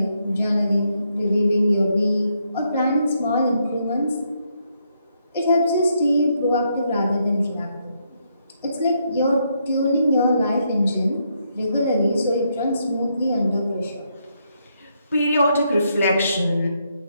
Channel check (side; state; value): both; inverted; correlation -0.77